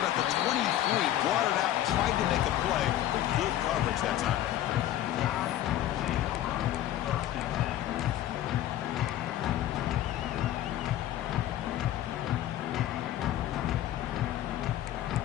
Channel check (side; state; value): right; quieter; 12.8 dB